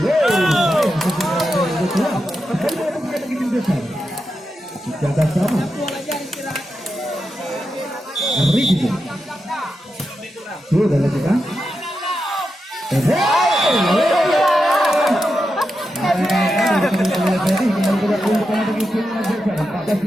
Jaga sama. Ricky. Sudah lakukan.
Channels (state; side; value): normal; both; correlation 0.88